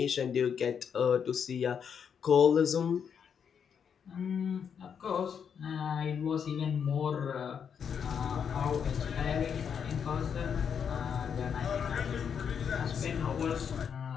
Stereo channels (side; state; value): right; quieter; 7.3 dB